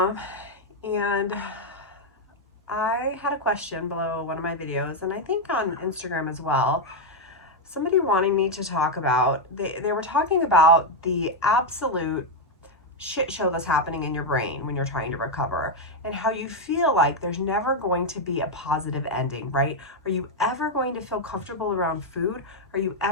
and I had a question below one of my videos, and I think on Instagram as well, somebody wanting me to talk about, they were talking about the absolute shit show that's happening in your brain when you're trying to recover, and how you feel like there's never going to be a positive ending, right? Are you ever going to feel comfortable around food? Are you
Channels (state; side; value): normal; both; correlation 0.02